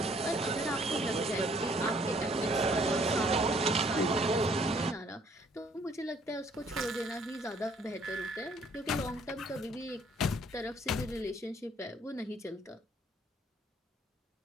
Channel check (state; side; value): normal; both; correlation 0.62